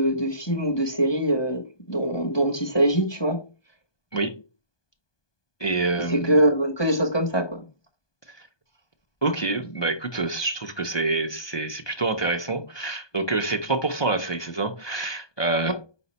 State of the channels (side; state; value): right; late; 1.2 ms